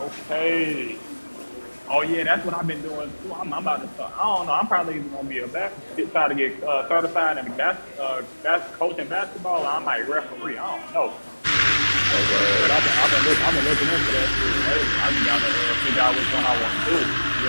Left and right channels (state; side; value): inverted; both; correlation -1.00